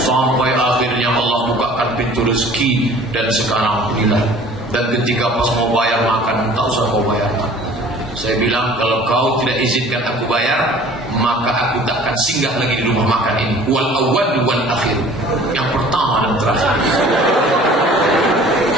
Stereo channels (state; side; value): normal; both; correlation 0.49